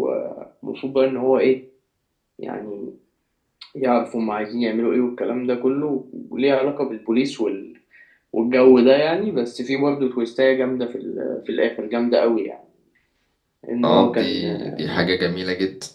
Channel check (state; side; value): identical; both; correlation 1.00